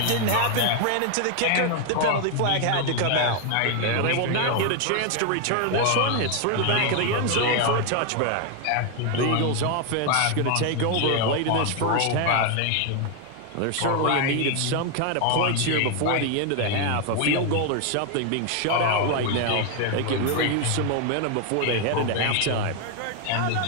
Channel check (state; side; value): different; both; correlation 0.01